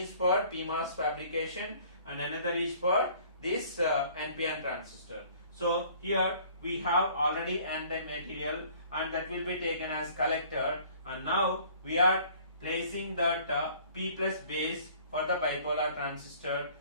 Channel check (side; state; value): both; inverted; correlation -0.53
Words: for CMOS fabrication and another is for this NPN transistor. So here we have already N-type material and that will be taken as collector, and now we are placing that P plus base for the bipolar transistor.